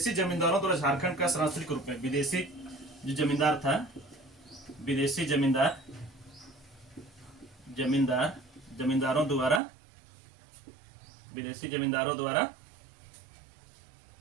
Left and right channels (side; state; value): left; drops out; at 9.6 s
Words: जमींदारों द्वारा झारखंड का शरणार्थी के रूप में। विदेशी जो जमींदार था, विदेशी जमींदारों द्वारा